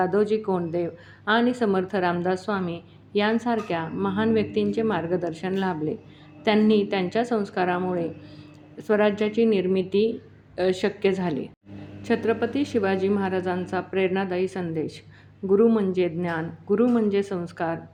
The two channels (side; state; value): both; identical; correlation 1.00